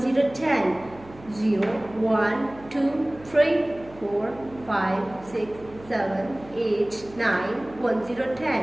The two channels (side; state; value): right; noise; hum, 21 dB below the sound